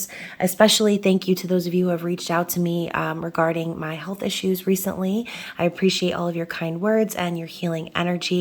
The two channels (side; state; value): both; identical; correlation 1.00